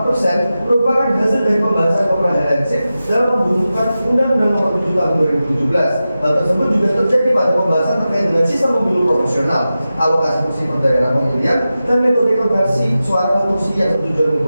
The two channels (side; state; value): both; inverted; correlation -0.93